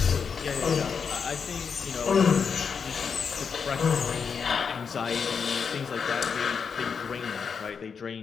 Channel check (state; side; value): quieter; right; 6.1 dB